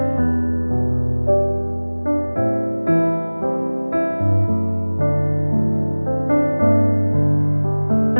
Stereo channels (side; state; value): both; inverted; correlation -1.00